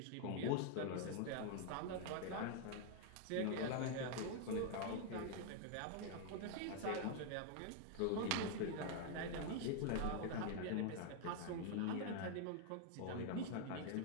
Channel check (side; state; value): both; different; correlation 0.00